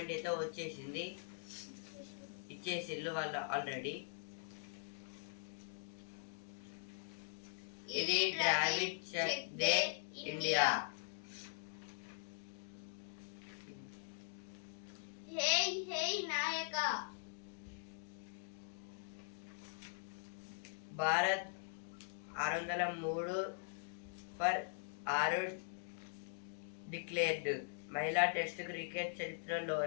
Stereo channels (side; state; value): right; silent; digital silence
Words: అయితే ఇచ్చేసిళ్ళు వాళ్ళు ఆల్రెడీ. ఇది Dravid check they India. Hey hey Nayaka. Bharat 603 for 6 declared. మహిళా టెస్ట్ క్రికెట్